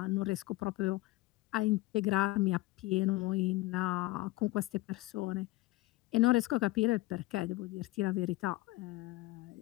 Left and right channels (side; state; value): right; quieter; 19.6 dB